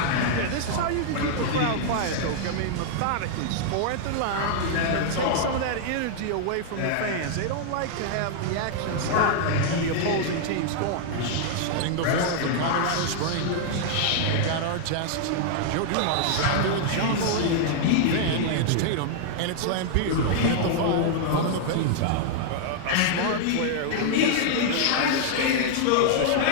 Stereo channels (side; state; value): both; different; correlation -0.01